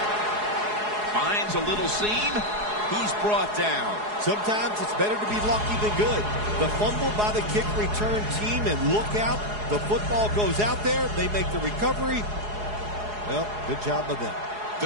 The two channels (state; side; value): late; left; 4.8 ms